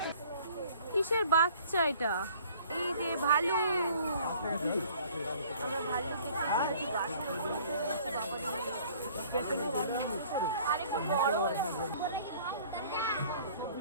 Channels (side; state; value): both; inverted; correlation -0.53